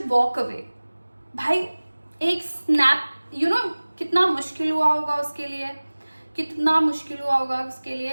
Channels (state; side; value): inverted; both; correlation -1.00